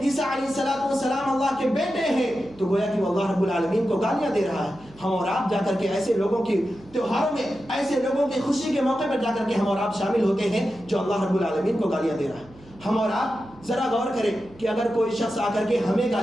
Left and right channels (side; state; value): right; noise; hum, 24 dB below the sound